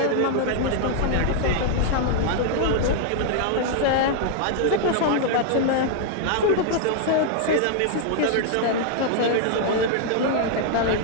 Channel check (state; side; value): different; both; correlation 0.00